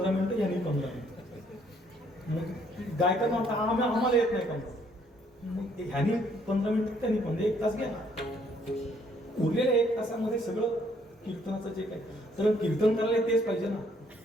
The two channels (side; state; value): both; normal; correlation 0.66